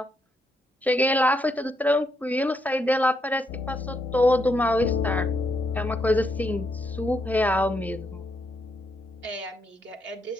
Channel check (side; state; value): both; normal; correlation 0.78